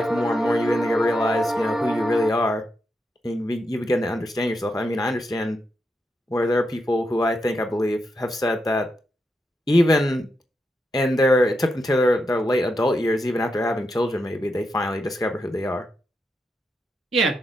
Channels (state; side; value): normal; both; correlation 0.84